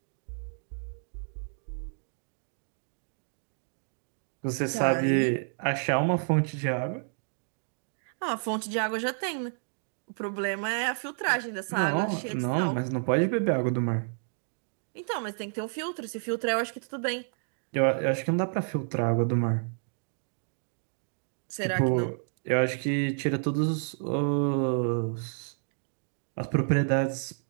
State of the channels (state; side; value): silent; left; digital silence